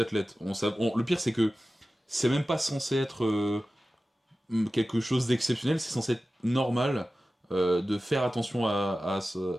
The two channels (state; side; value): normal; both; correlation 0.95